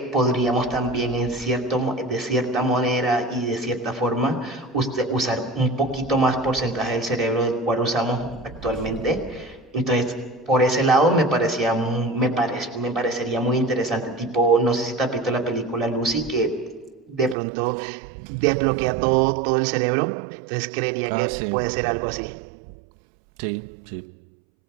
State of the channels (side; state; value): left; drops out; at 17.4 s